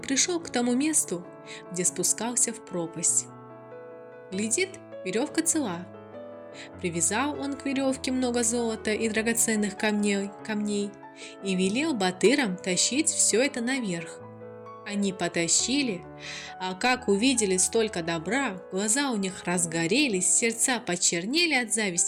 к тому месту, где спускался в пропасть. Глядит, веревка цела. Привязал он к веревке много золота и драгоценных камней и велел батырам тащить все это наверх. Они потащили, а как увидели столько добра, глаза у них разгорелись, сердца почернели от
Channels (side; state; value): both; identical; correlation 1.00